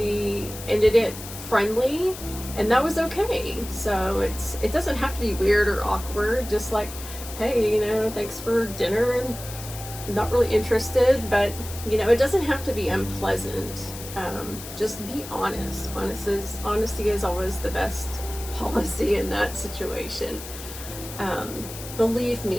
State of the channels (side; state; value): left; noise; hiss, 12 dB below the sound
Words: ended it friendly, and that was okay. So it doesn't have to be weird or awkward. Just like, hey, thanks for dinner, and I'm not really interested, but it doesn't have to be unpleasant. Just be honest. Honesty is always the best policy in that situation. Believe